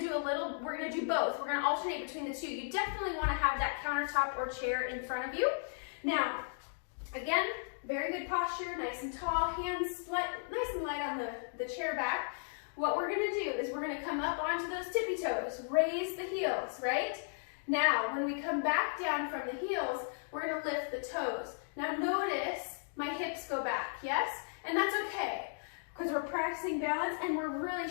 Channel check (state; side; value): silent; right; digital silence